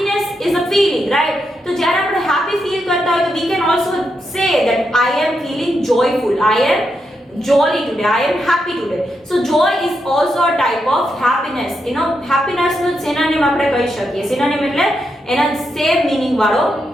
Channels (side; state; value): both; normal; correlation 0.83